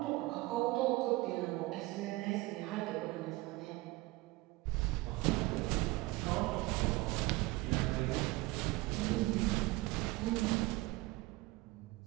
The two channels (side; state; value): left; quieter; 20.6 dB